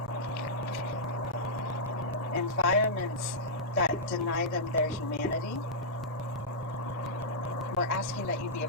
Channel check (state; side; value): normal; both; correlation -0.11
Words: that deny them their humanity. We're asking that you be a